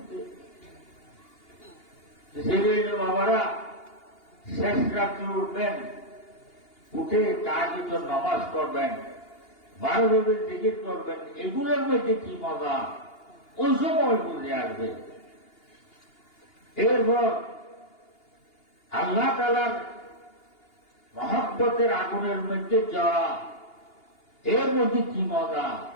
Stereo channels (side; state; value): right; late; 2.8 ms